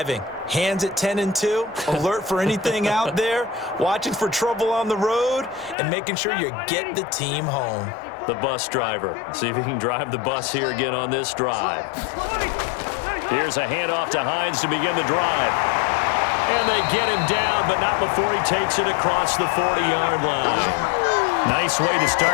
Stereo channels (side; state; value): right; drops out; at 5.8 s